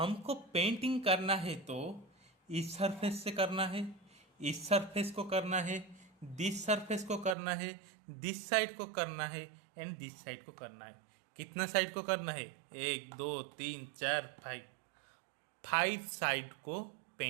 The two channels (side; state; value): left; drops out; at 7.4 s